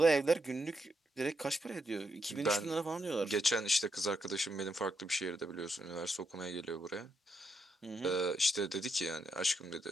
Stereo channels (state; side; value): normal; both; correlation 0.81